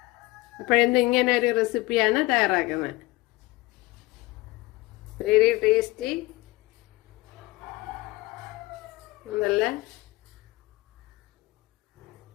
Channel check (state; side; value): quieter; right; 20.2 dB